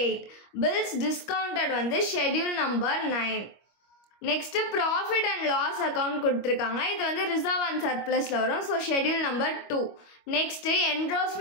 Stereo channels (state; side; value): late; right; 25 ms